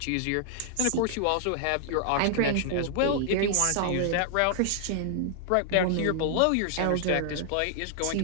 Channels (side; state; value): both; different; correlation -0.01